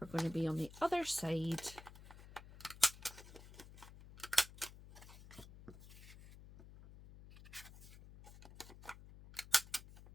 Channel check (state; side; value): noise; left; hum, 17 dB below the sound